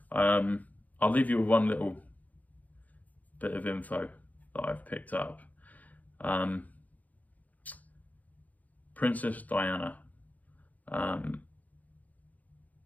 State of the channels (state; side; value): late; right; 0.078 ms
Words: I'll leave you with one little bit of info that I've picked up. Princess Diana.